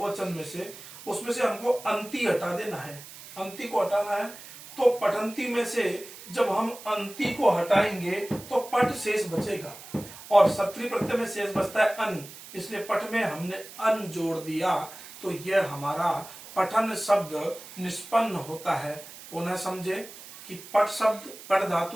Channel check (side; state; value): right; noise; hiss, 16 dB below the sound